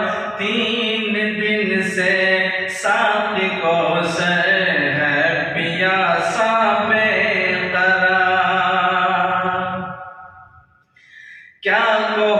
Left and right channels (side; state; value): both; identical; correlation 1.00